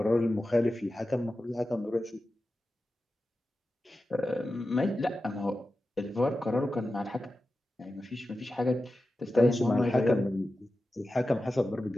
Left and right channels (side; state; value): both; normal; correlation 0.93